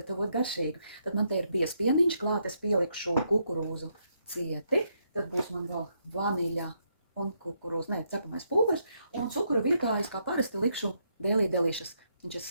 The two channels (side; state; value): both; inverted; correlation -0.77